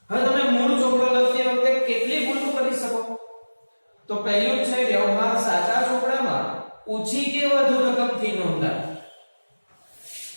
હવે તમે મૂળ ચોપડો લખતી વખતે કેટલી ભૂલો કરી શકો? તો પહેલું છે વ્યવહાર સાચા ચોપડામાં ઓછી કે વધુ રકમથી નોંધાય.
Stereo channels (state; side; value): inverted; both; correlation -1.00